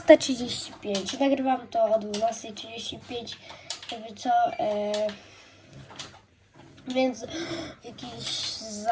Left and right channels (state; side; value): identical; both; correlation 1.00